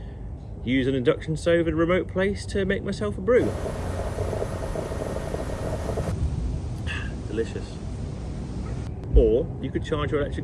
use an induction stove in a remote place to make myself a brew. Delicious. Or you could charge your electric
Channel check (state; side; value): identical; both; correlation 1.00